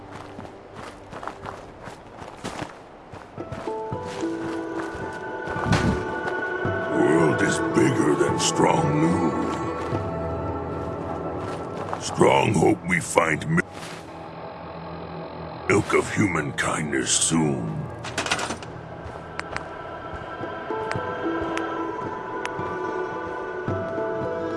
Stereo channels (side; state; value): both; identical; correlation 1.00